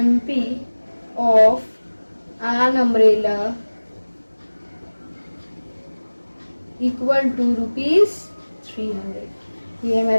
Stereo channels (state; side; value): inverted; both; correlation -1.00